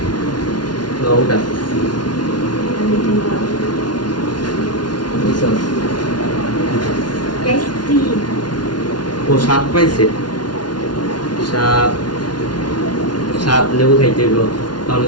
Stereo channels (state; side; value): late; right; 0.70 ms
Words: ওটা ও সাত পাইছে। সাত লেবু খাইতে হইব, তখন